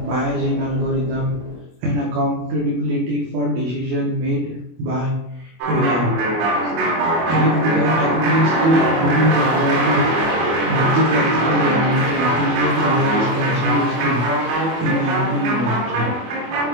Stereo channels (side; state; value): left; late; 24 ms